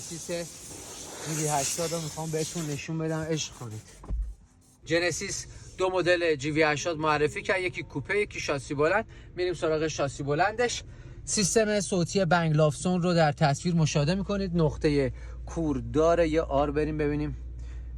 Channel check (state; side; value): identical; both; correlation 1.00